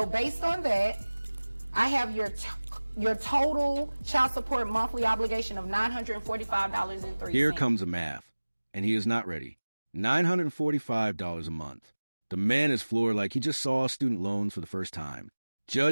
based on that, I have your total child support monthly obligation of $945.03. Here comes the math, and he is not ready. $945 a month. The man is floored like he just saw student loans for the first time.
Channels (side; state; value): both; inverted; correlation -1.00